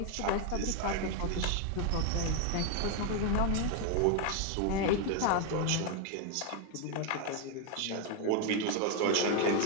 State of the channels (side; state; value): both; different; correlation 0.01